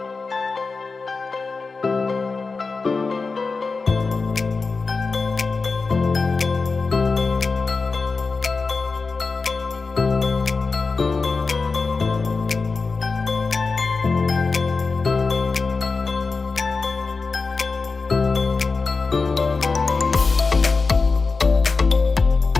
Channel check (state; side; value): quieter; right; 4.2 dB